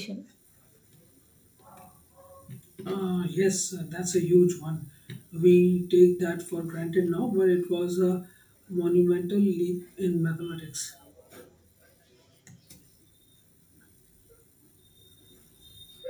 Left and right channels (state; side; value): identical; both; correlation 1.00